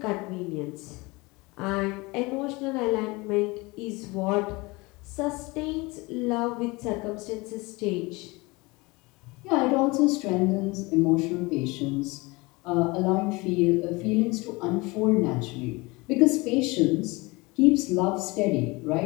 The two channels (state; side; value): quieter; right; 24.3 dB